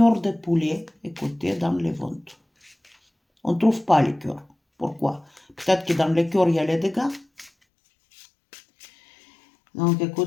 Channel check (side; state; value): right; drops out; at 7.5 s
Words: de poulet, écoutez, dans les ventes? On ne trouve pas les cœurs. Pourquoi? Peut-être que dans les cœurs, il y a les dégâts. Donc,